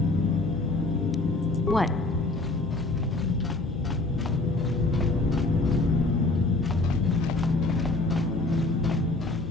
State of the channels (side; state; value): right; quieter; 3.0 dB